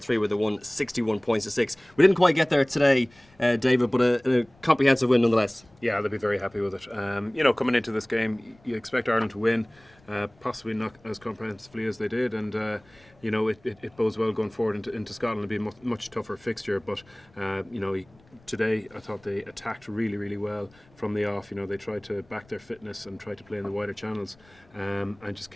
where they won 61 points to 6. We didn't quite get there today, David, but a comprehensive win nonetheless. Yeah, they'll be very happy with it. Coming into this game, you expect Ireland to win, possibly not as comprehensively as they did, and it bodes well going forward into Scotland. It'll be a much tougher fixture, but today I thought they attacked really, really well from the off. They tried to back their fitness and tried to play in the wider channels, and just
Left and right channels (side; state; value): left; noise; rumble, 29 dB below the sound